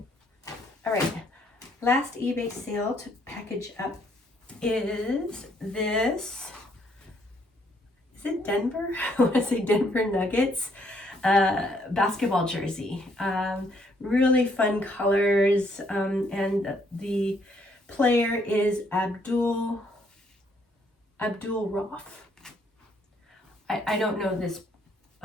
All right, last eBay sale to package up is this. Is it Denver? I want to say Denver Nuggets basketball jersey. Really fun colors, and the player is Abdul Roth. I don't know this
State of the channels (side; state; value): both; normal; correlation 0.69